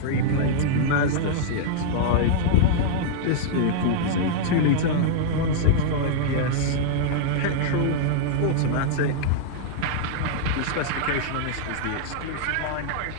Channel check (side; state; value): both; different; correlation -0.01